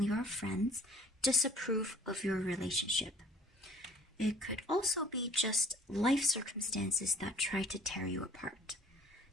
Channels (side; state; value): both; normal; correlation 0.52